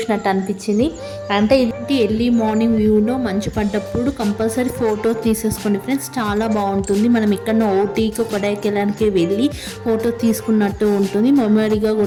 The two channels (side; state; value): both; identical; correlation 1.00